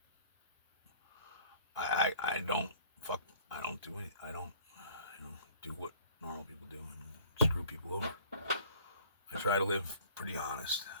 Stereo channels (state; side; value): inverted; both; correlation -0.53